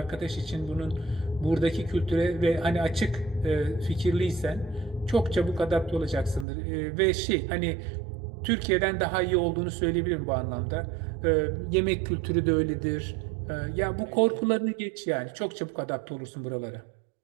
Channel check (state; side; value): drops out; left; at 6.5 s